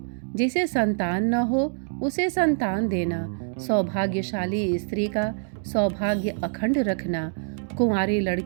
जिसे संतान न हो उसे संतान देना, सौभाग्यशाली स्त्री का सौभाग्य अखंड रखना, कुंवारी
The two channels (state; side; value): silent; left; digital silence